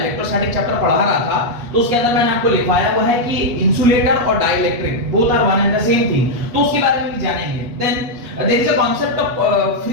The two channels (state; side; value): late; left; 8.2 ms